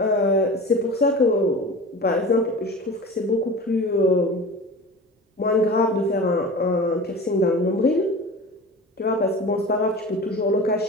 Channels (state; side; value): normal; both; correlation 0.35